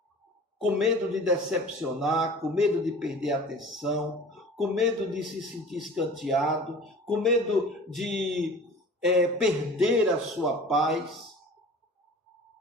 com medo de decepcionar, com medo de perder a atenção, com medo de se sentir escanteado, com medo de perder a sua paz.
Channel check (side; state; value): both; normal; correlation 0.42